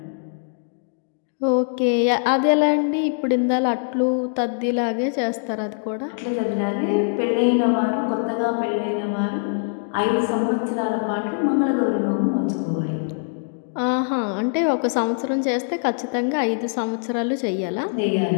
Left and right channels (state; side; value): silent; right; digital silence